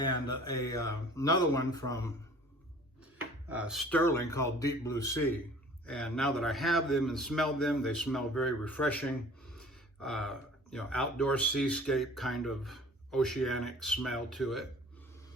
another one from Sterling called Deep Blue Sea. And now that I have them and smelled them, they smell very refreshing, outdoor seascape kind of oceanic smell to it.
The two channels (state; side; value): normal; both; correlation 0.48